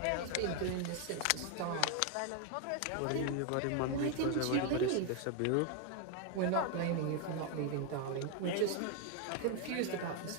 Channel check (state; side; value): different; both; correlation 0.01